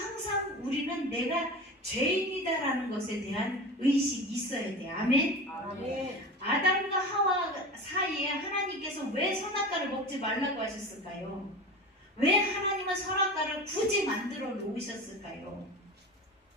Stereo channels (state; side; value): normal; both; correlation 0.31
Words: 우리는 내가 죄인이다라는 것에 대한 의식이 있어야 돼요. 아멘. 아멘. 아담과 하와 사이에 하나님께서 왜 선악과를 먹지 말라고 하셨을까요? 왜 하나님은 선악과를 굳이 만들어 놓으셨을까요?